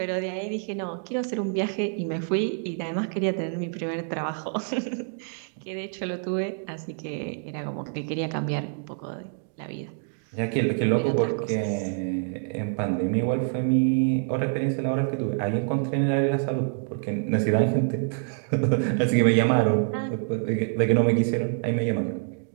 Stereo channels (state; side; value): silent; left; 57 dB below the other